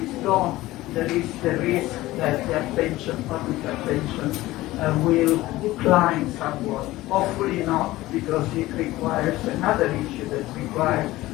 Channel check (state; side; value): quieter; right; 17.5 dB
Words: is gone, there is the risk that the attention, public attention, will decline somewhat. Hopefully not, because it requires another issue that requires